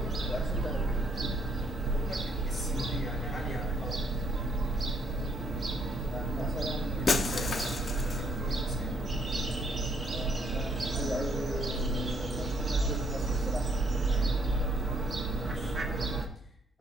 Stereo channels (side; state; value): both; normal; correlation 0.68